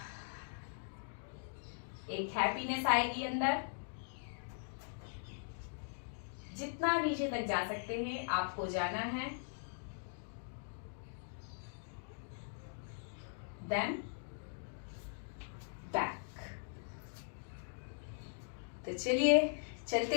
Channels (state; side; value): silent; right; digital silence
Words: एक हैप्पीनेस आएगी अंदर। जितना नीचे तक जा सकते हैं आपको जाना है, देन बैक। तो चलिए